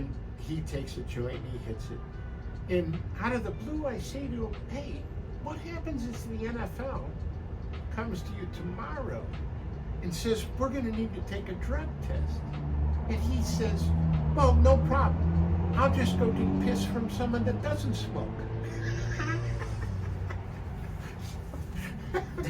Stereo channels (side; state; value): both; identical; correlation 1.00